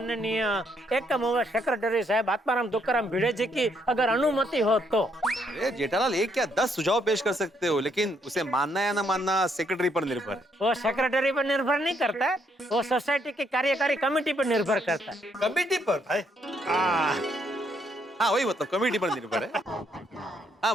एकम सेक्रेटरी साहब आत्माराम तुकाराम भिड़े जी की अगर अनुमति हो तो। अरे जेठालाल, एक क्या 10 सुझाव पेश कर सकते हो, लेकिन उसे मानना या ना मानना सेक्रेटरी पर निर्भर है। वो सेक्रेटरी पर निर्भर नहीं करता है, वो सोसाइटी की कार्यकारी कमेटी पर निर्भर करता है। कमेटी पर भाई? हाँ वही मतलब, कमेटी पर निर्भर है। हाँ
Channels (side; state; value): both; normal; correlation 0.72